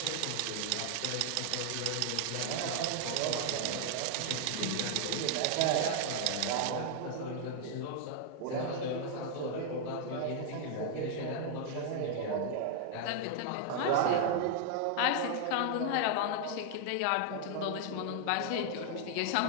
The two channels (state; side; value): different; both; correlation -0.01